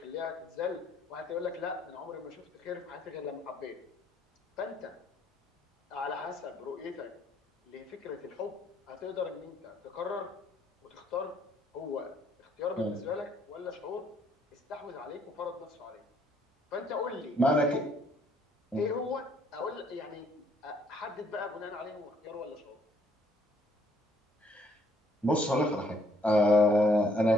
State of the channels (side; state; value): both; normal; correlation 0.66